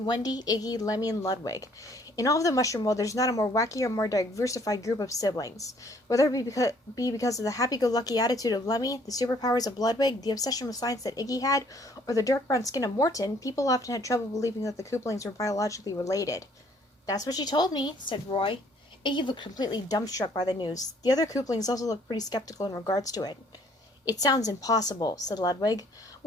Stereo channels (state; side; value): normal; both; correlation 0.61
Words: Wendy, Iggy, Lemmy, and Ludwig. In all of the Mushroom World, there's not a more wacky or more diversified group of siblings. Whether it be because of the happy-go-lucky attitude of Lemmy, the superpowers of Ludwig, the obsession with science that Iggy had, or the dark brown skin of Morton, people often had trouble believing that the Koopalings were biologically related. That's what she told me, said Roy. Iggy looked completely dumbstruck by the news. The other Koopalings also looked pretty skeptical in regards to it. It sounds impossible, said Ludwig.